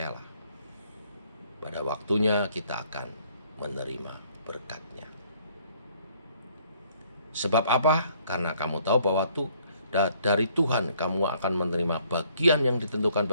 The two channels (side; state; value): both; inverted; correlation -0.64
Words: pada waktunya kita akan menerima berkat-Nya. Sebab apa? Karena kamu tahu bahwa dari Tuhan kamu akan menerima bagian yang ditentukan